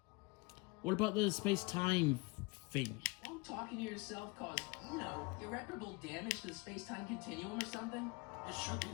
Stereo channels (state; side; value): quieter; right; 26.1 dB